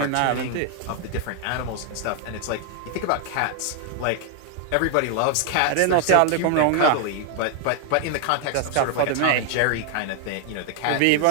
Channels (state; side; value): different; both; correlation 0.00